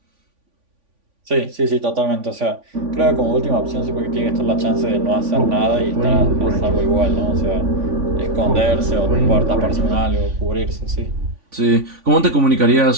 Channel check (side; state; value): left; late; 3.5 ms